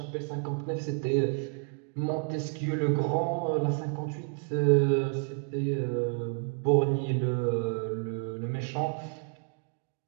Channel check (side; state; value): left; quieter; 39.9 dB